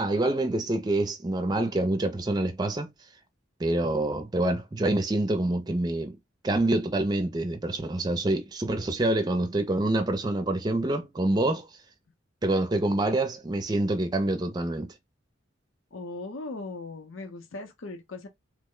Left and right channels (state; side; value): normal; both; correlation 0.72